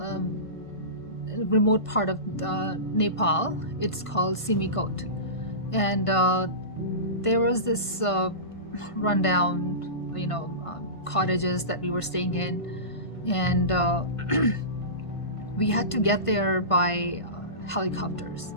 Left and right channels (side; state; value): right; late; 1.5 ms